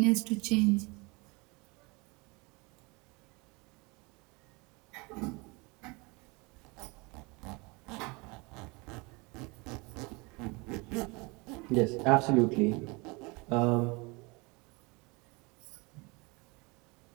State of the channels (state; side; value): quieter; left; 27.2 dB